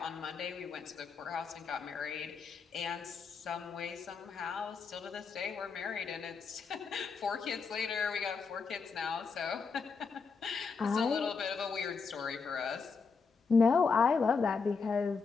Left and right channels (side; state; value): right; quieter; 5.1 dB